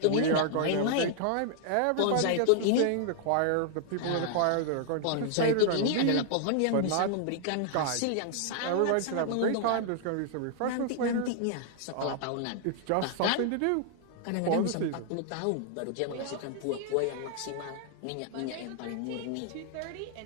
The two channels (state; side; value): different; both; correlation 0.00